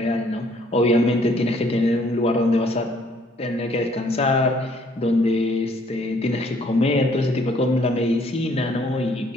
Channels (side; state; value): both; normal; correlation 0.63